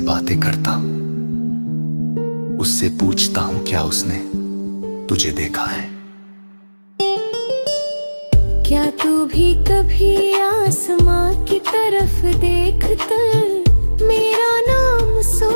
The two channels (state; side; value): inverted; both; correlation -1.00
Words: बातें करता हूँ। उससे पूछता हूँ क्या उसने तुझे देखा है। क्या तू भी कभी आसमां की तरफ देख कर मेरा नाम